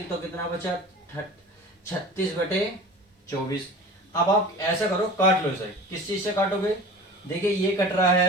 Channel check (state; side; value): normal; both; correlation 0.39